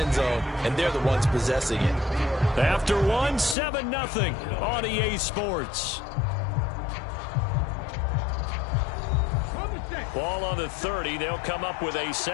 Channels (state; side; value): drops out; right; at 3.6 s